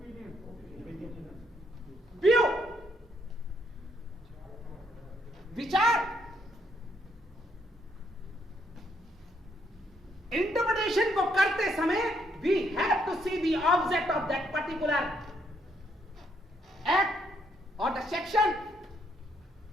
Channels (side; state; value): both; normal; correlation 0.72